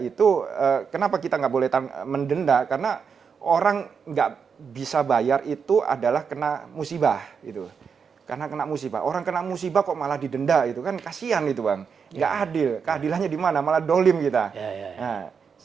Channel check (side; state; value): left; quieter; 6.2 dB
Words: kenapa kita nggak boleh mendenda? Karena orang nggak bisa bayar itu adalah kena musibah gitu. Karena kena musibah. Orang kena musibah kok malah didenda itu kan kasihan itu, Bang. Nggak adil. Keadilannya di mana? Malah dolim kita. Ya. Nah,